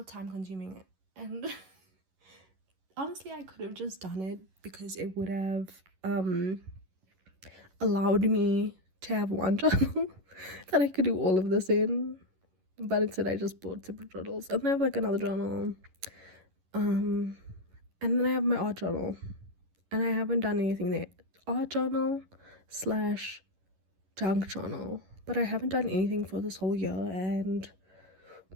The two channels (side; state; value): left; late; 11 ms